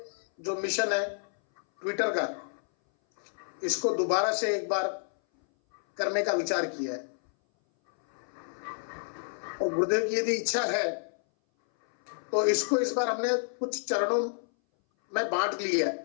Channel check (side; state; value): right; silent; 58 dB below the other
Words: जो मिशन है ट्विटर का, इसको दोबारा से एक बार करने का विचार किया है। और गुरुदेव की यदि इच्छा है तो इसको इस बार हमने कुछ चरणों में बांट लिया